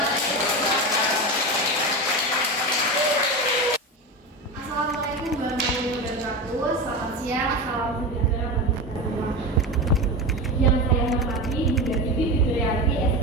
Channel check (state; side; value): normal; both; correlation 0.22